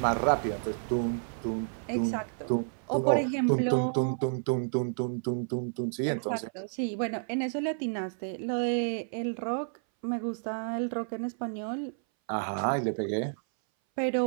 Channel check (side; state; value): left; silent; 58 dB below the other